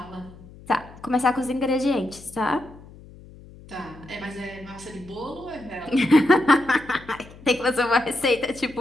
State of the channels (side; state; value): left; noise; hum, 20 dB below the sound